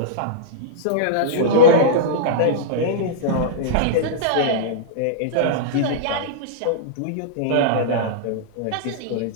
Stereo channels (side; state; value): both; different; correlation -0.03